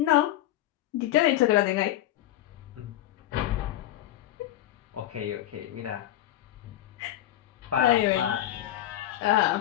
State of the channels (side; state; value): right; quieter; 13.5 dB